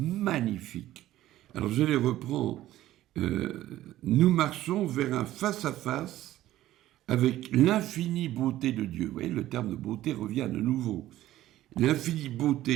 Alors je les reprends. Nous marchons vers un face-à-face avec l'infinie beauté de Dieu. Vous voyez, le terme de beauté revient de nouveau. L'infinie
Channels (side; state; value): left; quieter; 14.4 dB